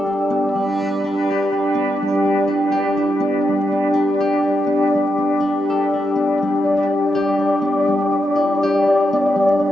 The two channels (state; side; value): normal; both; correlation 0.84